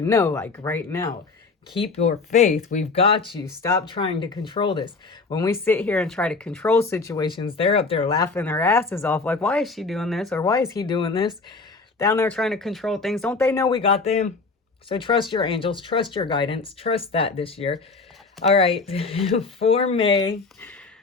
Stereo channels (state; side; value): quieter; right; 4.1 dB